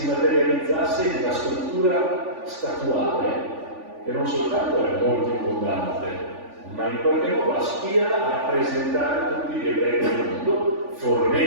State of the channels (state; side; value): late; left; 3.5 ms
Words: materializzasse in una struttura statuale che non soltanto è molto abbondante, ma in qualche modo aspira a rappresentare tutti gli ebrei del mondo,